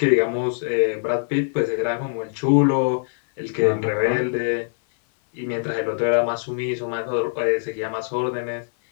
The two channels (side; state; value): right; silent; 57 dB below the other